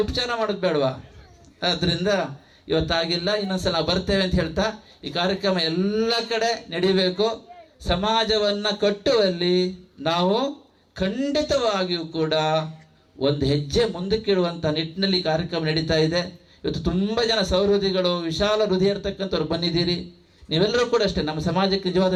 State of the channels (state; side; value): identical; both; correlation 1.00